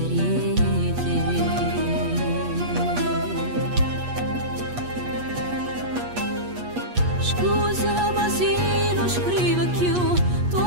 di te. Scusami se non scrivo più,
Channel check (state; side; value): late; left; 8.3 ms